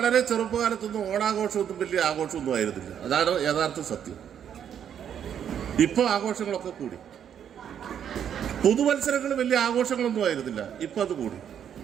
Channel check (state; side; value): quieter; left; 8.9 dB